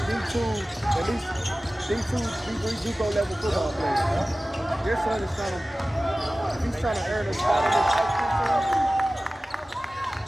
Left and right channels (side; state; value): both; normal; correlation 0.97